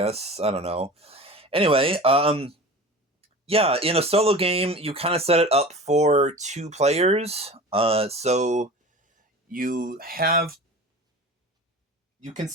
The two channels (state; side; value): normal; both; correlation 0.36